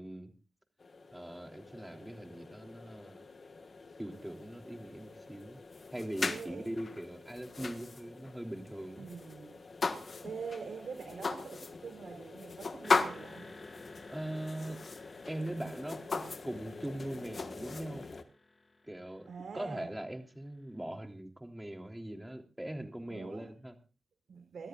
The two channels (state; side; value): normal; both; correlation 0.94